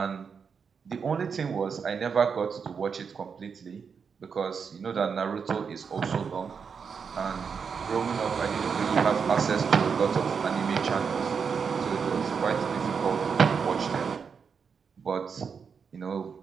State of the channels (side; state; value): left; quieter; 6.1 dB